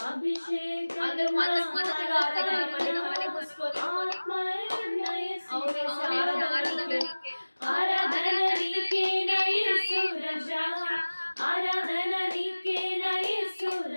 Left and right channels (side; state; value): both; inverted; correlation -1.00